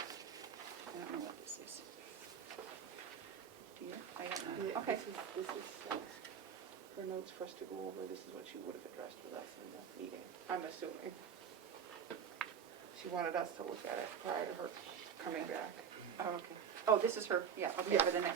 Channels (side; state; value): left; quieter; 7.5 dB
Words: know what this is. Do you? I don't know. Yeah, Okay. This is her notes for us to go over. This is what she would have addressed with us in the meeting, I'm assuming. She wanted us to look at it prior to her coming back. Oh, okay. Oh, this is her, yeah, okay, Yeah. for the